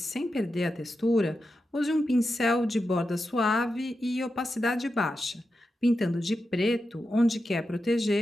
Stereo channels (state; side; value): normal; both; correlation 0.89